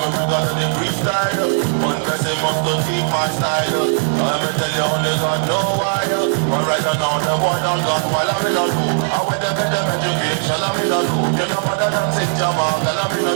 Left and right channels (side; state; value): left; silent; digital silence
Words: bring out the freestyle. One person must to keep my style. Let me tell you only God know why. But right now the boy done gone while I'm in a loop. I went to get them education, I'm in a loop. You know mother than St. Jamal, and I'm in a